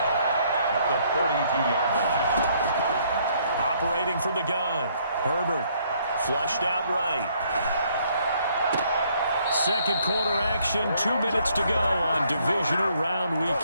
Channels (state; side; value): inverted; both; correlation -0.67